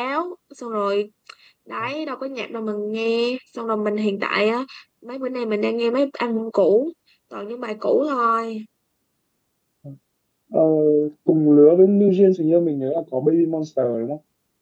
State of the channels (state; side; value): identical; both; correlation 1.00